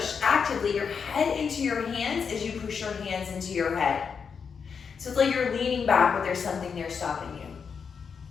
actively your head into your hands as you push your hands into your head. So it's like you're leaning back, but there's something there stopping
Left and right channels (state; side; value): quieter; right; 6.2 dB